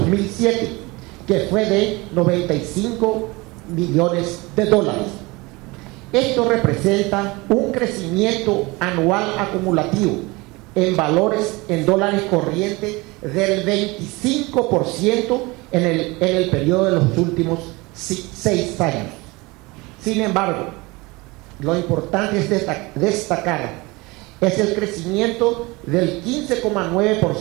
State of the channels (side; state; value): left; quieter; 23.9 dB